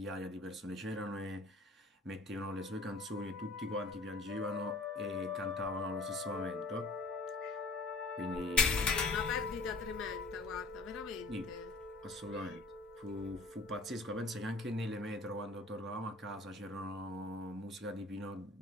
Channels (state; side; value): quieter; right; 3.1 dB